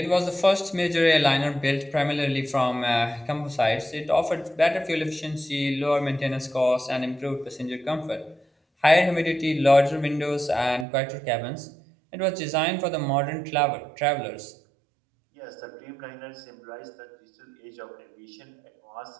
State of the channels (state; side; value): drops out; left; at 10.9 s